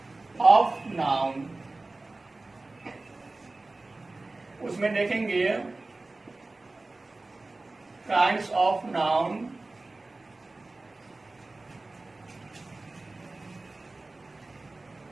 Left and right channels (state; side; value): quieter; left; 3.2 dB